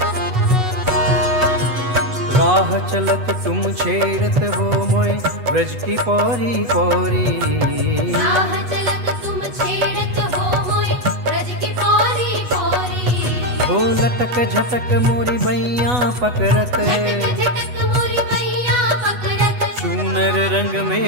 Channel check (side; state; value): left; late; 8.1 ms